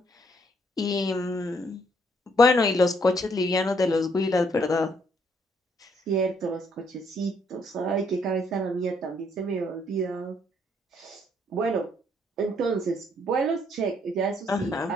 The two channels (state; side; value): normal; both; correlation 0.68